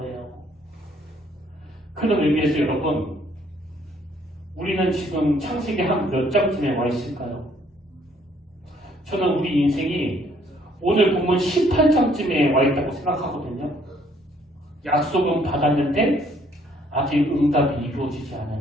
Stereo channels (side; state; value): both; normal; correlation 0.64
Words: 그런 의미에서 여러분 우리는 지금 창세기 한 몇 장쯤에 와 있을까요? 저는 우리 인생이 오늘 본문 18장쯤에 와 있다고 생각하거든요. 약속은 받았는데 아직 응답이 이루어지지